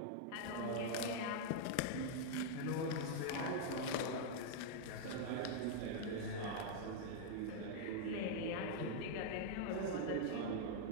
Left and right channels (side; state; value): both; different; correlation -0.01